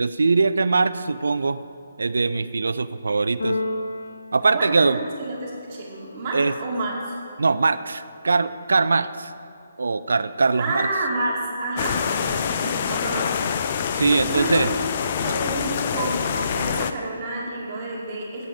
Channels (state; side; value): inverted; both; correlation -0.83